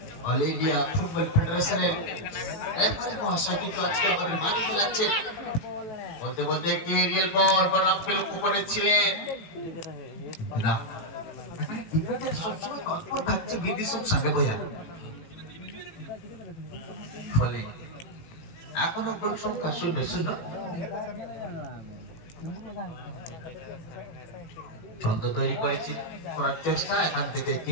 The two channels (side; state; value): right; late; 18 ms